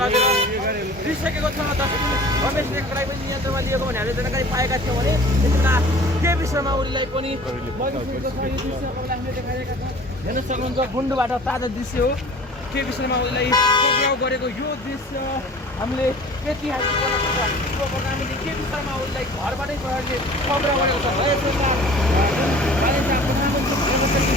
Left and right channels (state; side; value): normal; both; correlation 0.45